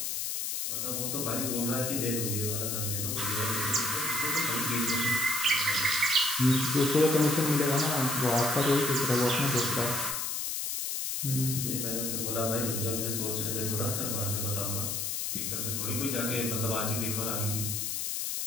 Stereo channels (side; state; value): left; noise; hiss, 2 dB below the sound